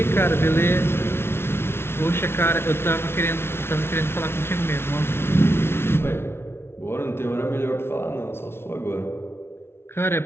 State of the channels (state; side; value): late; right; 0.12 ms